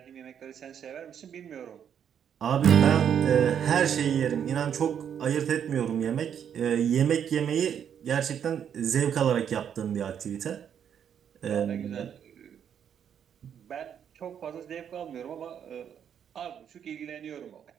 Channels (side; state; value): left; quieter; 8.6 dB